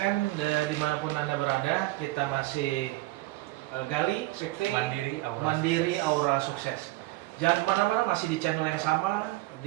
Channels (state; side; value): quieter; left; 19.1 dB